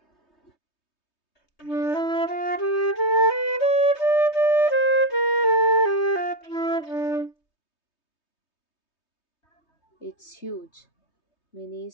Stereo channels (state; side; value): late; right; 3.2 ms